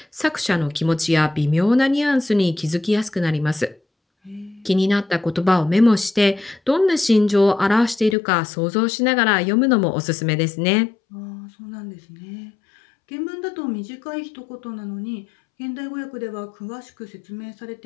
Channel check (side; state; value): right; drops out; at 8.2 s